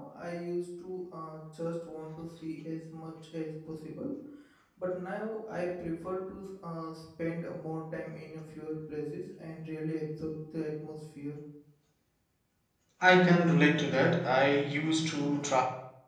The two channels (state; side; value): identical; both; correlation 1.00